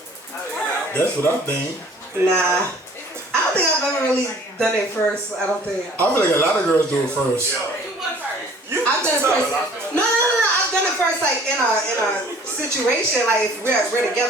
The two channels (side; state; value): both; normal; correlation 0.52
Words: That's what I think. Nah, I don't think I've ever really done it first. I don't think. I feel like a lot of girls do it first. I've done it first. No. I've done it first, like in a situation, like if we're